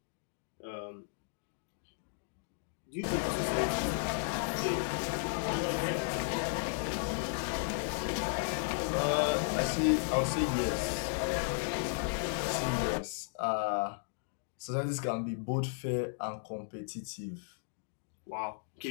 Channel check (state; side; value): silent; right; digital silence